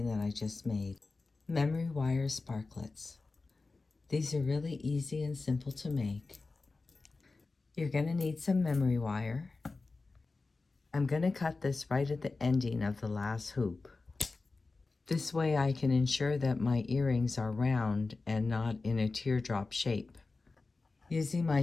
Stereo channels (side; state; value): right; quieter; 3.7 dB